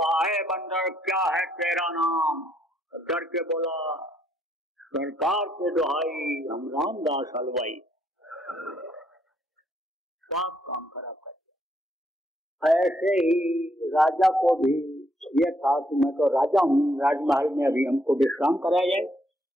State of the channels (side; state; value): both; normal; correlation 0.72